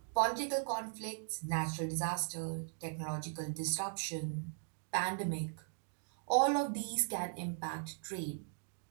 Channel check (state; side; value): silent; left; digital silence